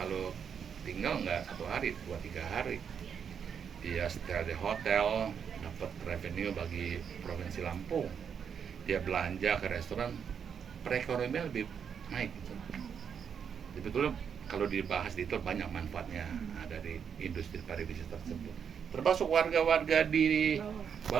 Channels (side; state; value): left; quieter; 7.3 dB